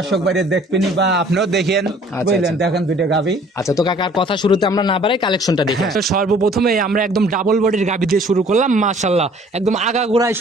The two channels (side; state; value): both; normal; correlation 0.54